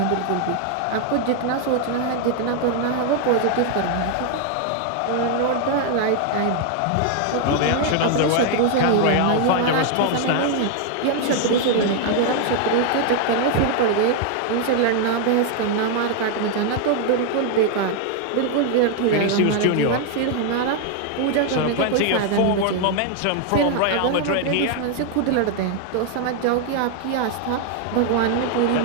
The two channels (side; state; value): both; different; correlation 0.00